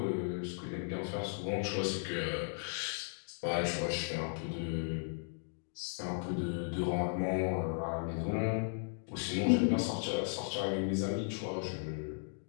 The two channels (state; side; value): silent; right; digital silence